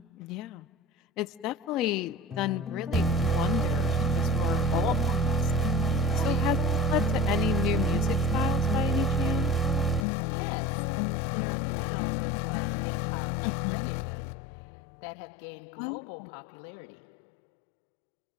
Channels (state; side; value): drops out; right; at 10.1 s